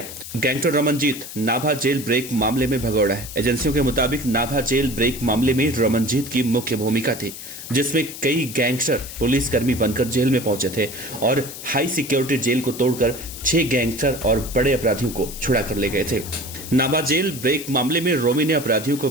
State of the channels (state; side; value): noise; left; hiss, 11 dB below the sound